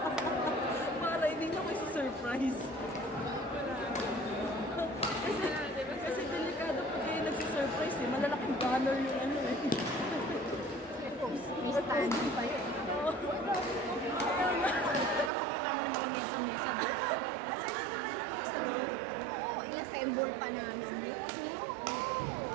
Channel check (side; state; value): left; drops out; at 15.3 s